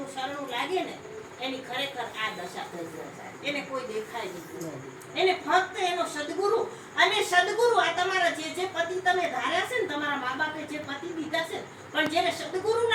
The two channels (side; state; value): both; identical; correlation 1.00